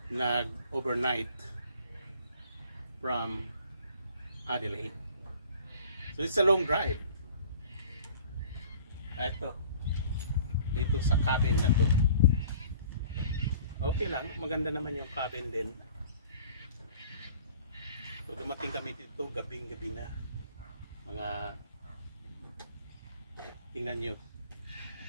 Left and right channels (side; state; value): both; inverted; correlation -0.50